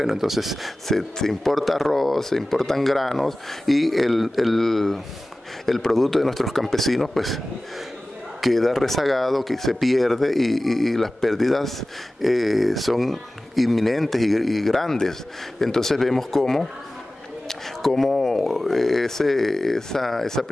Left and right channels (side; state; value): both; normal; correlation 0.97